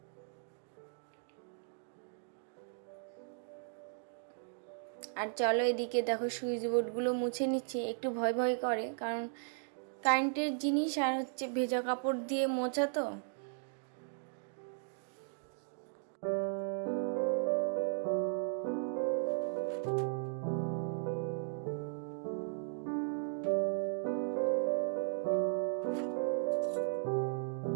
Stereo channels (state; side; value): silent; left; digital silence